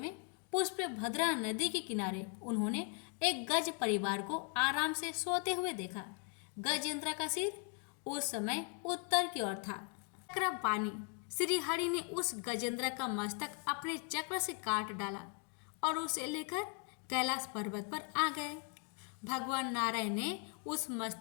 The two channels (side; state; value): right; quieter; 35.1 dB